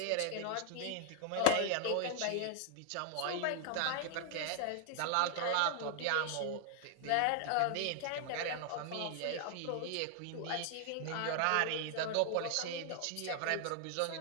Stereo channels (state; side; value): different; both; correlation 0.00